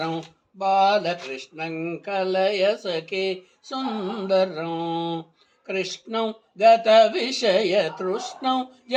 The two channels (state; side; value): identical; both; correlation 1.00